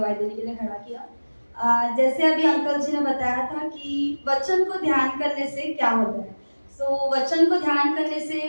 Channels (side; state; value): both; inverted; correlation -1.00